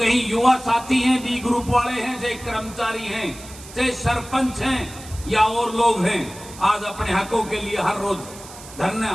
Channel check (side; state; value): right; noise; hiss, 17 dB below the sound